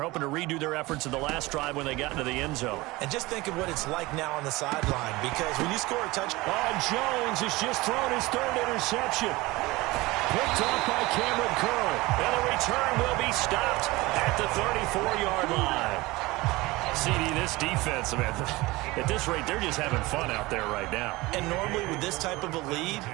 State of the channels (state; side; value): quieter; left; 21.1 dB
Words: hoping to redo their efforts in the last drive when they got into the end zone. And just think of what it's like now on the sideline, because when you score a touchdown... Oh, Jones has just thrown his 3rd interception. Picked off by Cameron Curl. And the return will be stopped at the 34-yard line. CD, this defense, man, at this rate, they're just having fun out there right now. And normally with this type of a lead,